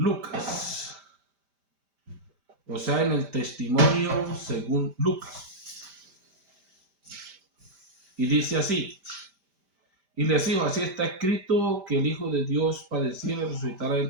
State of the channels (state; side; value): late; left; 5.1 ms